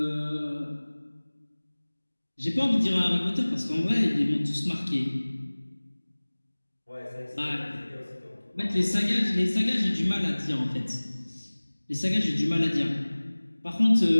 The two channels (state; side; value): inverted; both; correlation -1.00